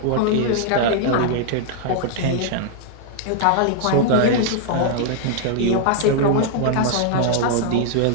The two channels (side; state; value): both; different; correlation -0.01